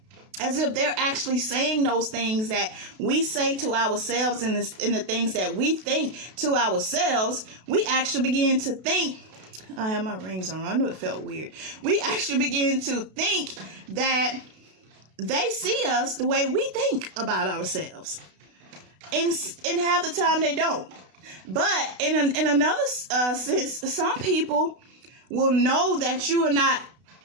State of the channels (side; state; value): left; late; 32 ms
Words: as if they're actually saying those things that we say to ourselves, and the things that we think to ourselves. We actually begin to think, I have my rings on. I knew it felt weird. We actually begin to think that they see us the way we think about ourselves. And half the time they don't. But in another sense, some people will know that you are not